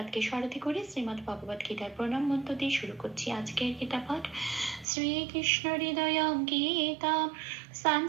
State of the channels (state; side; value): drops out; left; at 4.9 s